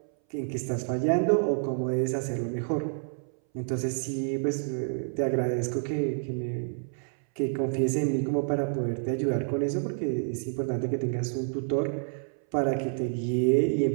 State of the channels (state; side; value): silent; left; 59 dB below the other